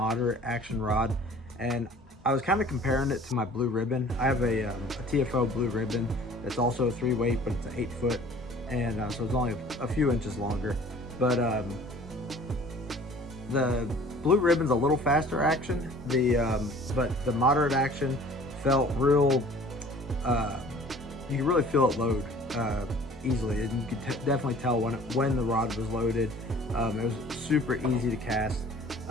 action rod, and I was kind of comparing it to my Blue Ribbon. I have a TFO Blue Ribbon that's also a 3-weight, but it's an 8-foot, and so it's only a few inches longer. But the Blue Ribbon's a little faster action. But the moderate action felt real. You can really feel it load easily, and you could definitely tell when the rod was loaded. It was super easy to cast.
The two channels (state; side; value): normal; both; correlation 0.49